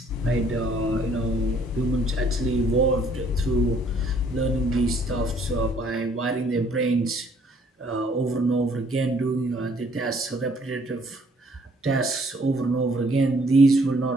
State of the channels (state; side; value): normal; both; correlation 0.62